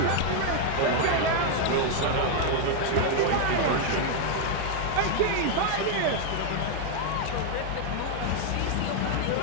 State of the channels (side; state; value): both; different; correlation 0.00